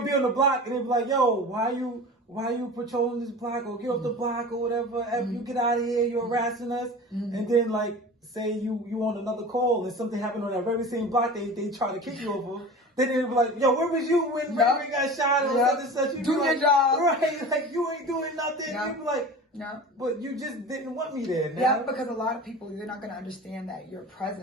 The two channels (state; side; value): normal; both; correlation 0.35